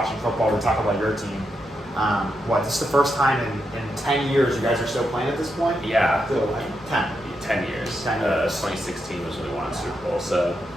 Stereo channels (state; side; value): normal; both; correlation 0.83